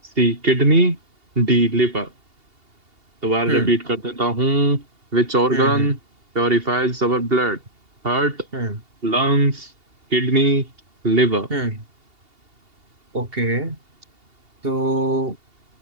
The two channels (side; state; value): left; late; 2.8 ms